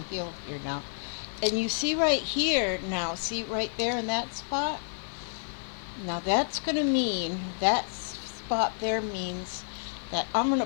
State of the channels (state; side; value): silent; right; 56 dB below the other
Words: here now. And you see right here now, see right there in that spot? Now that's going to mean, that spot there means that I'm going